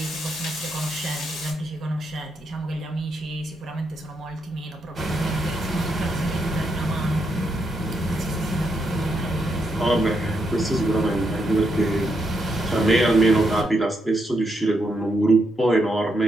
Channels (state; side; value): normal; both; correlation 0.80